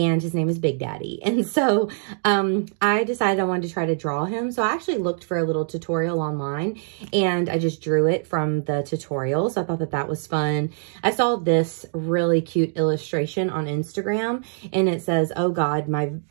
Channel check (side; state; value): left; silent; digital silence